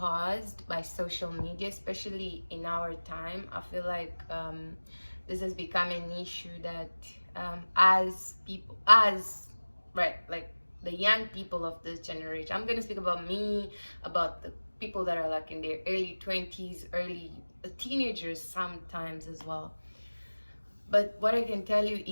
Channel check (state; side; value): inverted; both; correlation -1.00